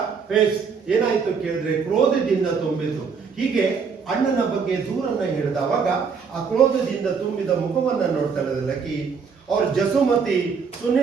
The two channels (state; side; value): quieter; left; 5.8 dB